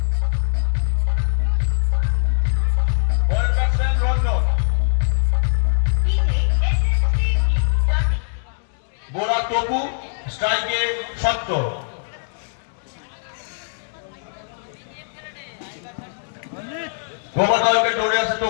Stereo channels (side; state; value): right; silent; digital silence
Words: পরের ব্যাটসম্যান রঞ্জন, বোলার টপু, স্ট্রাইকে শক্ত। ওভার দ্য উইকেট দৌড়ে আসে